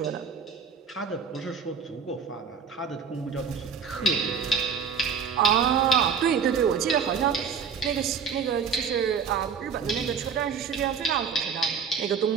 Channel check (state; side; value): quieter; left; 6.4 dB